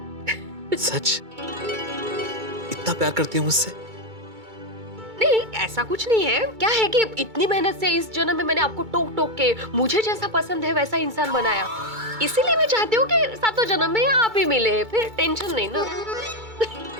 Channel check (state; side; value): late; left; 2.2 ms